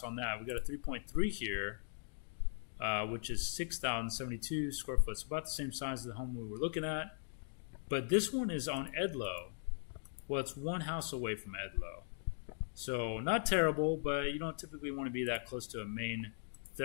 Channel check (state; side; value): silent; right; digital silence